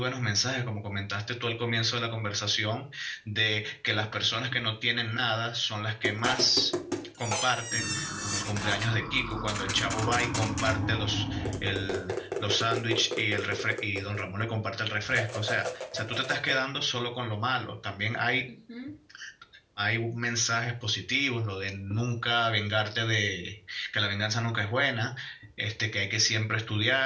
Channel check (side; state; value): both; identical; correlation 1.00